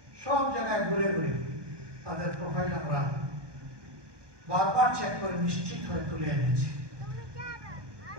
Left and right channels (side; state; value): left; late; 1.2 ms